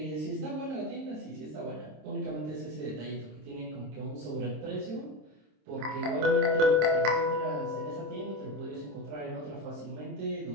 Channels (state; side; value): late; left; 26 ms